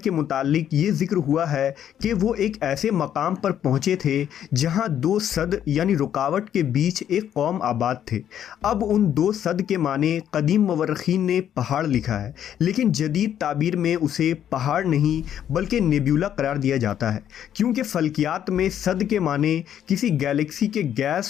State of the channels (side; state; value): right; quieter; 10.0 dB